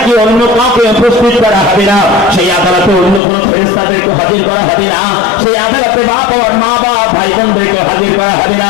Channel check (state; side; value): drops out; right; at 3.2 s